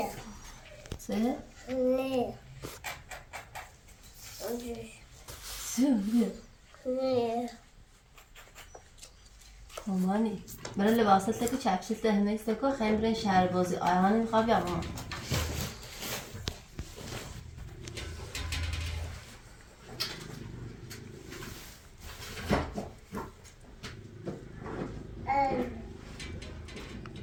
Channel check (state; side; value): identical; both; correlation 1.00